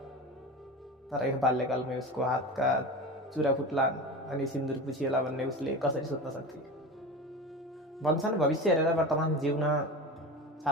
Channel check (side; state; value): both; normal; correlation 0.28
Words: तर यो बाल्यकालमै उसको हातका चुरा फुट्लान् अनि सिन्दुर पुछिएला भन्ने उसले कसरी सोच्न सक्थे। भन्छन् भविष्य हेरेर वर्तमान जिउन